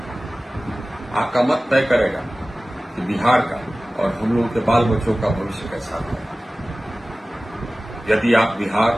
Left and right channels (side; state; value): both; normal; correlation 0.97